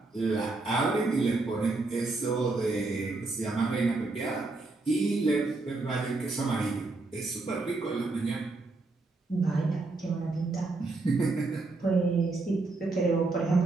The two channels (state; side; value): quieter; left; 3.4 dB